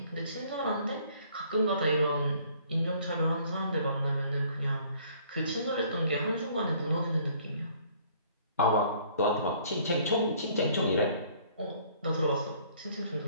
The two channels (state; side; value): inverted; both; correlation -0.58